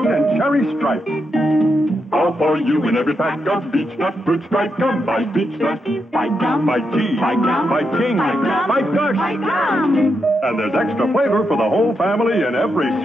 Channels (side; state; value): both; normal; correlation 0.83